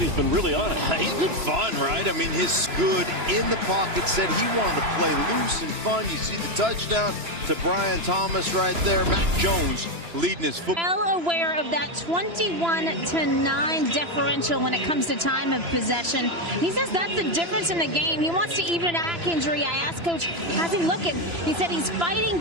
he's been really on it. He's been fun, right? I mean, his good in the pocket said he wanted to play loose and fun. You see the touchdown to Brian Thomas right there. Mac Jones leading his football. Well aware of that 21-9 differential when it comes to time of possession. He says that's the difference in the game. He wants to even a back injury. I asked Coach, how's he looking? He said he's fighting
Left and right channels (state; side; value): late; left; 3.0 ms